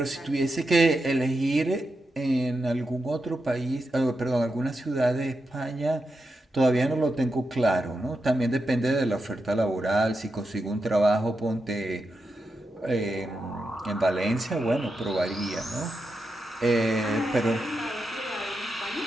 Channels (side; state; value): both; normal; correlation 0.87